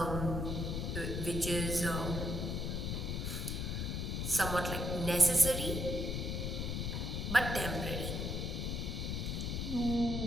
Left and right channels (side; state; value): left; noise; rumble, 1 dB below the sound